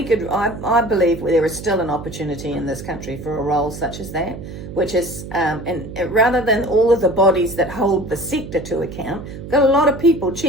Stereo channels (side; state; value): right; noise; hum, 11 dB below the sound